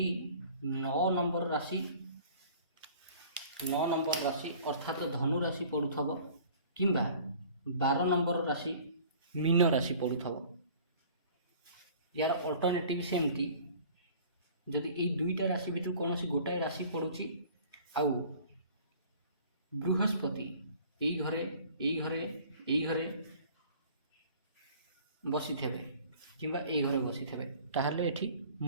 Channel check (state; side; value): inverted; both; correlation -0.49